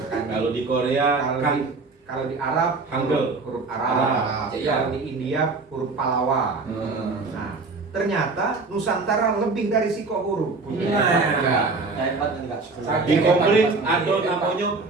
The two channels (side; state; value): left; quieter; 3.9 dB